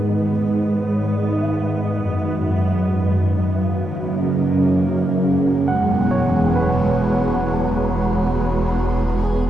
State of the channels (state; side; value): normal; both; correlation 0.85